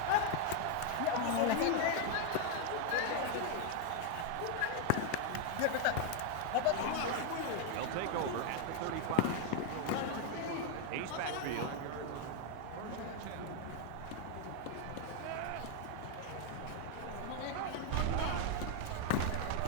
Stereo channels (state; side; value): different; both; correlation 0.00